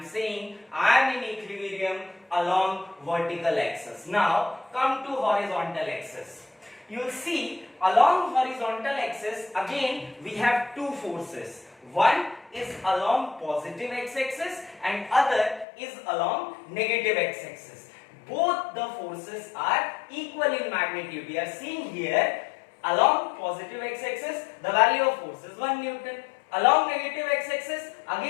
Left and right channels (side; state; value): right; drops out; at 15.7 s